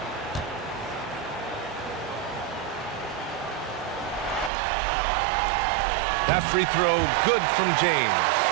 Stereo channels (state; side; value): drops out; left; at 4.5 s